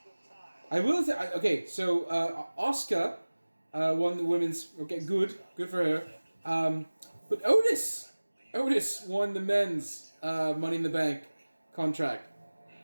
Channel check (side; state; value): both; inverted; correlation -1.00